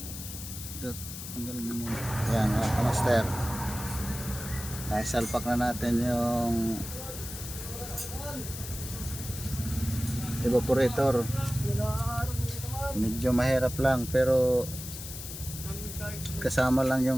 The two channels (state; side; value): noise; left; hiss, 10 dB below the sound